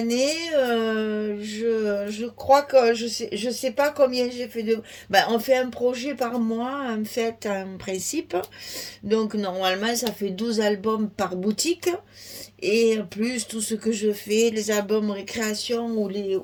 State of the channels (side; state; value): both; identical; correlation 1.00